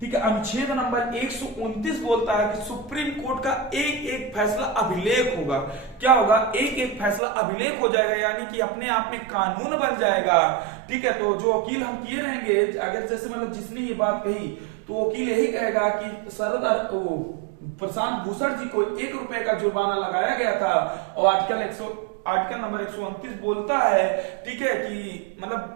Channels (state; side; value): drops out; left; at 7.2 s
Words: ठीक है, अनुच्छेद नंबर 129 बोलता है कि सुप्रीम कोर्ट का एक फैसला अभिलेख होगा। क्या होगा? एक फैसला अभिलेख हो जाएगा, यानी कि अपने आप में कानून बन जाएगा, ठीक है। तो जो वकील हम किए रहेंगे, अगर जैसे मतलब जिसने ये बात कही, तो वकील यही कहेगा कि प्रशांत भूषण जी को 1 रुपए का जुर्माना लगाया गया था और आर्टिकल नंबर 129 बोलता है, ठीक है, कि